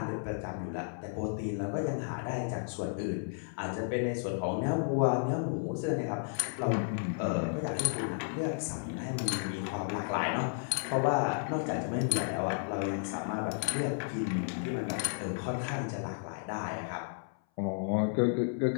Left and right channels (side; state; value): right; silent; 56 dB below the other